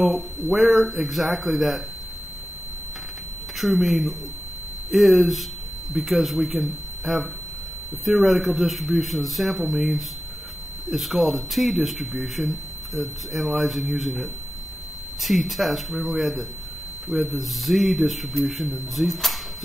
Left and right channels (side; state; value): both; normal; correlation 0.93